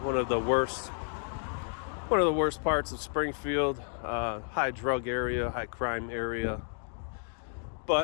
of the worst parts of Springfield, high drug area, high crime area.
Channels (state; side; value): silent; right; 57 dB below the other